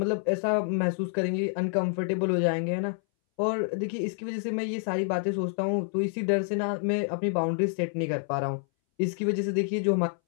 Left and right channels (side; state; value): right; silent; 59 dB below the other